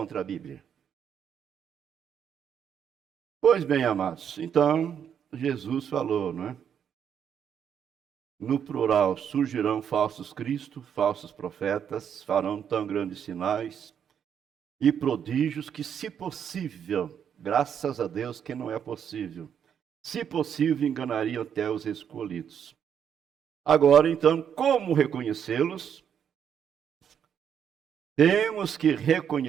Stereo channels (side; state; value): left; quieter; 8.3 dB